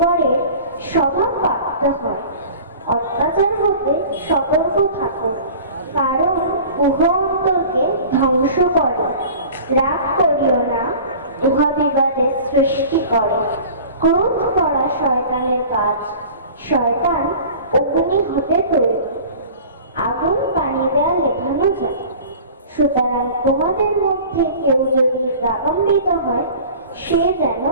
স্বভাব প্রাপ্ত হয়। অত্যাচার হতে সতর্ক থাকো, কারণ উহা অন্তরকে ধ্বংস করে। রাগ করিও না, উহা বিবাদের সৃষ্টি করে। ক্রোধ করা শয়তানের কাজ। শয়তান অগ্নি হতে তৈরি, আগুন পানি দেয়া লেখানো যায়। সুতরাং তোমাদের মধ্যে কেউ যদি রাগান্বিত হয় সে যেন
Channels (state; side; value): inverted; both; correlation -0.42